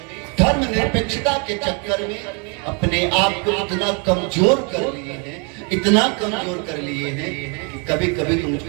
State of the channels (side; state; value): left; quieter; 35.3 dB